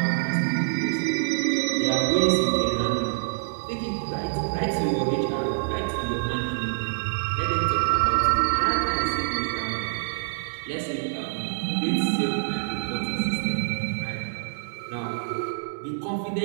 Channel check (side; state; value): left; silent; 61 dB below the other